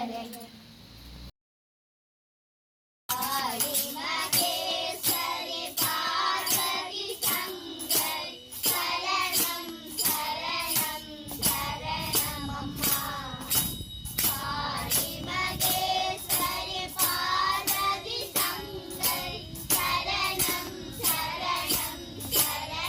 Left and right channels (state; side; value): identical; both; correlation 1.00